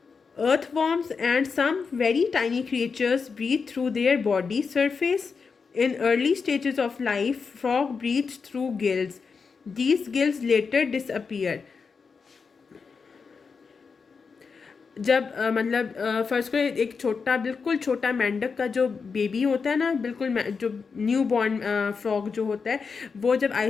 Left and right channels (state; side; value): quieter; right; 5.3 dB